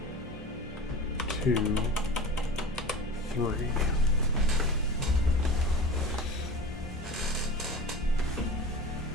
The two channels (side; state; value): both; normal; correlation 0.35